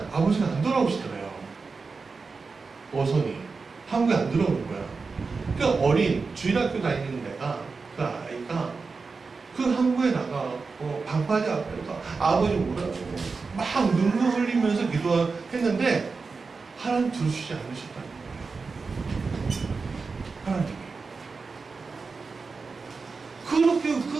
아버지가 안 돌아오시더래요. 어선이 한국에 안 들어오는 거야. 그 어린 주일학교 다니는 데가 그 아이가 그 항구에 나가고 방파제 앞에서 아버지 오라고 막 눈물 흘리면서 기도했는데 하나님 들으시지 않으셨다는 거예요. 하나님이 그렇게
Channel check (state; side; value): quieter; left; 4.5 dB